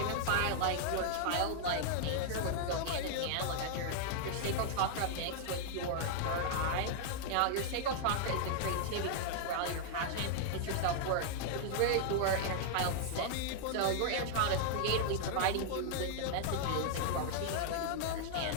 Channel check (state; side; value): different; both; correlation 0.00